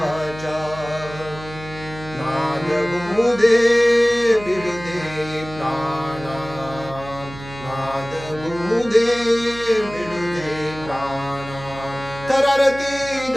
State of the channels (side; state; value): right; noise; hum, 15 dB below the sound